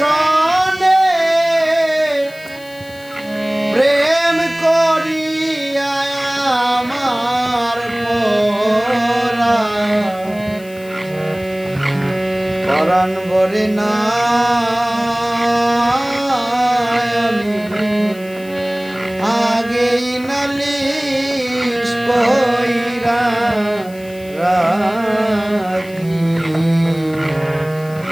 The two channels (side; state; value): left; noise; hiss, 23 dB below the sound